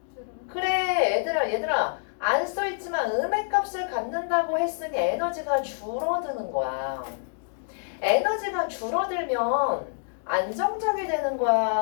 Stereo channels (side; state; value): right; silent; digital silence